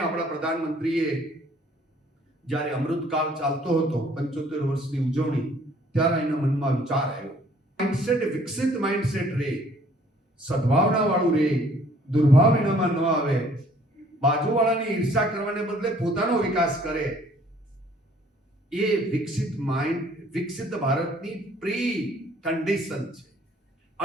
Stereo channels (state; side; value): normal; both; correlation 0.59